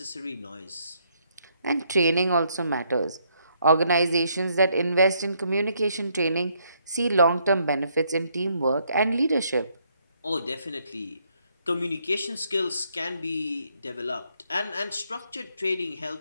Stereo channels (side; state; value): both; inverted; correlation -0.72